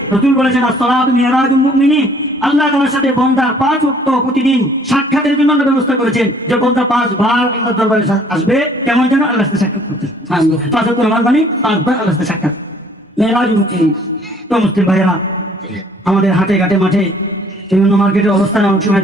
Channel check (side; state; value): both; normal; correlation 0.58